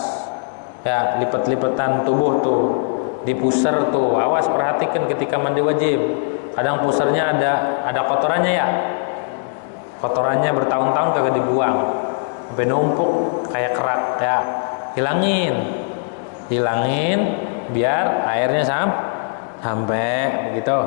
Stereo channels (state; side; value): silent; right; digital silence